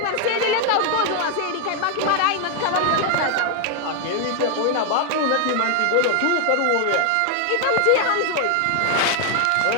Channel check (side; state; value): both; different; correlation 0.00